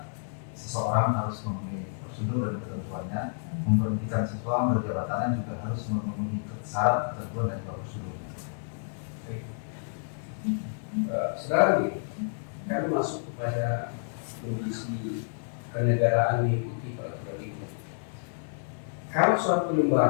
seseorang harus memenuhi prosedur dan ketentuannya. Memberhentikan seseorang dari jabatannya juga harus memenuhi syarat, ketentuan, dan juga prosedur. Saudara, kami masuk kepada kondisi kenegaraan mengikuti peraturan ini. Kalau suatu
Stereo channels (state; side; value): silent; right; digital silence